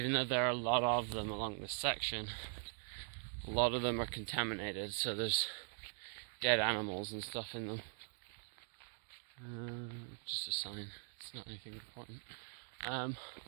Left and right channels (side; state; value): left; silent; 50 dB below the other